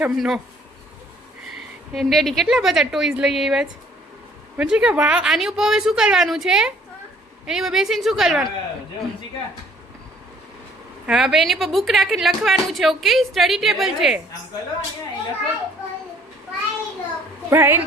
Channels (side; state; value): both; normal; correlation 0.59